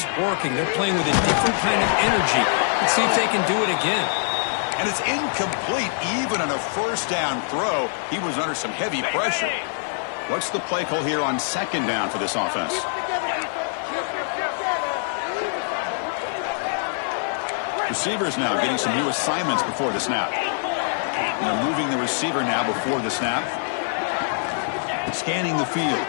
working. They're playing with a different kind of energy. Let's see if they can do it again. And it's incomplete even on a first down throw. He was under some heavy pressure. What's the play call here on second down for this offense? Receivers now getting some new assignments before the snap. They're moving the receiver now before the snap. Scanning the field.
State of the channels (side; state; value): right; silent; 60 dB below the other